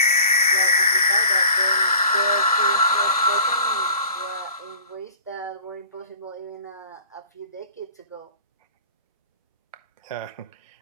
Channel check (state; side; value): inverted; both; correlation -0.47